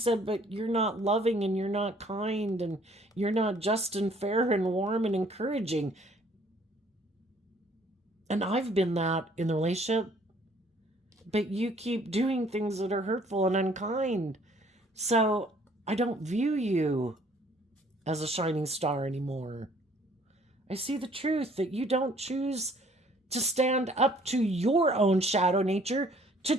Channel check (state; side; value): normal; both; correlation 0.59